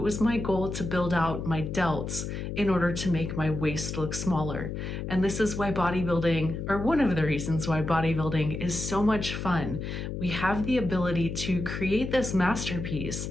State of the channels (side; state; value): left; noise; hum, 5 dB below the sound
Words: was my goal to build out my delts in order to make my waist look smaller. And this is why bodybuilding, or one of the reasons why bodybuilding is so much fun. We have the ability to create this masterpiece,